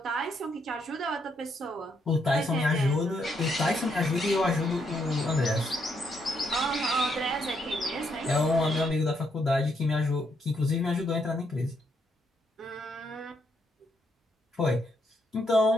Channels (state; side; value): normal; both; correlation 0.76